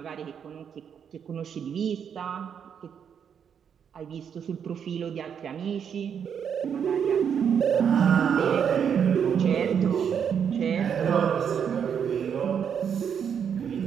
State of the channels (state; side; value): quieter; left; 7.7 dB